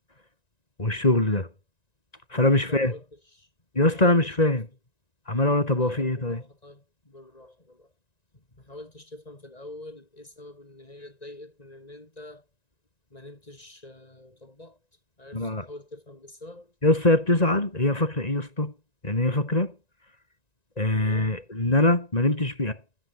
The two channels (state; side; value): late; right; 1.9 ms